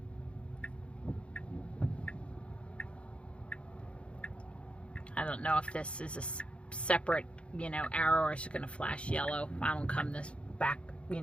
I don't know if this is a separate, arrow, or it's going to flash yellow. I don't come this back,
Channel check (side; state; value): right; late; 0.059 ms